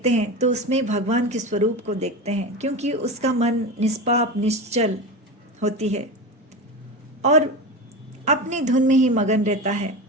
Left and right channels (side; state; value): both; normal; correlation 0.24